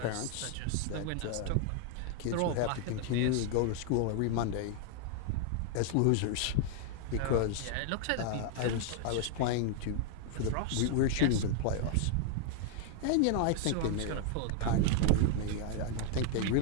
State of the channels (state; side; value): different; both; correlation 0.00